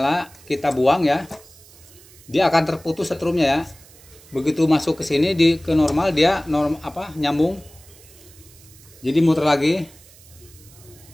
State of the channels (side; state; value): right; noise; hiss, 24 dB below the sound